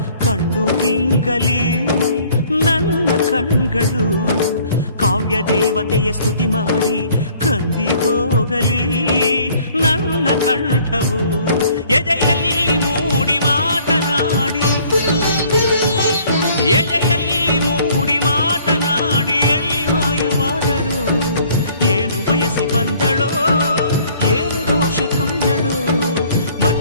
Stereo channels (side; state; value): both; inverted; correlation -0.58